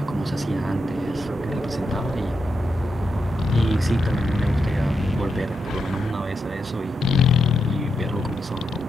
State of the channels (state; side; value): normal; both; correlation 0.83